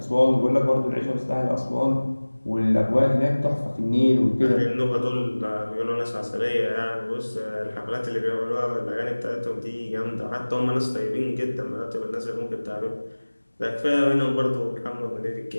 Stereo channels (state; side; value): inverted; both; correlation -1.00